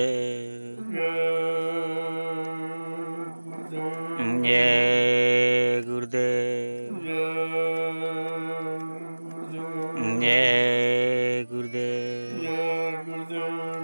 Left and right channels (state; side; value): inverted; both; correlation -1.00